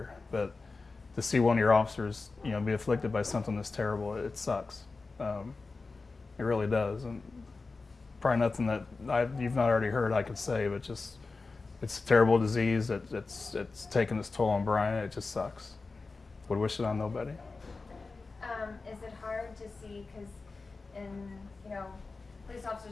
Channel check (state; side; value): quieter; right; 3.9 dB